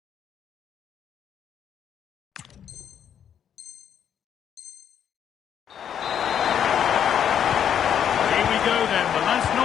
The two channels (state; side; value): quieter; right; 9.0 dB